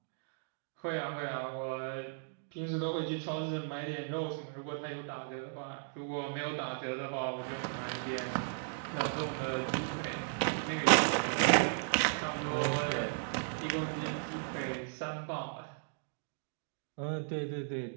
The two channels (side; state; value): left; silent; digital silence